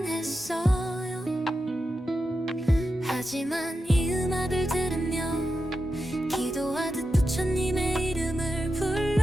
했어요. 하지만 이 음악을 들으며 기도하듯 부처님의 이름을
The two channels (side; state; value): both; normal; correlation 0.89